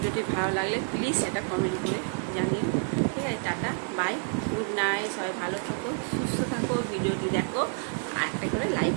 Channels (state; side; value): silent; left; 57 dB below the other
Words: ভালো লাগলে প্লিজ সেটা কমেন্ট করে জানিও, ঠিক আছে। টাটা, বাই, গুড নাইট, সবাই ভালো থাকো, সুস্থ থাকো, ভিডিওটি দেখো, আর একটা করে লাইক